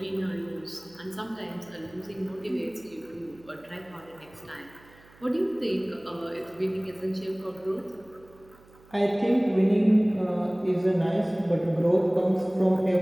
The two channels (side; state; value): right; noise; hum, 26 dB below the sound